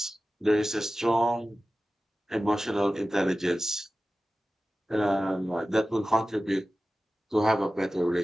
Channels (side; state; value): both; normal; correlation 0.95